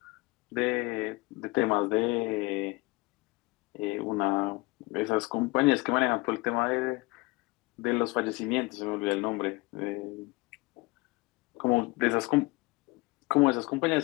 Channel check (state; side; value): quieter; right; 24.2 dB